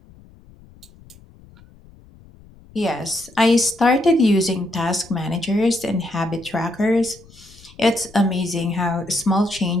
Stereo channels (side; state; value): left; noise; rumble, 24 dB below the sound